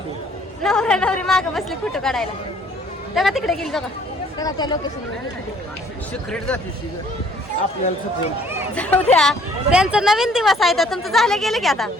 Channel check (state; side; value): normal; both; correlation 0.59